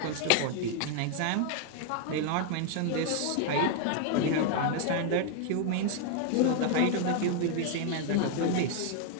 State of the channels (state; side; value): different; both; correlation 0.00